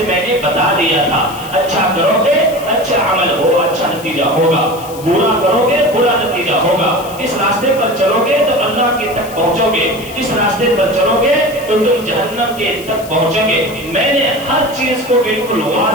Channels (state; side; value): noise; left; hiss, 17 dB below the sound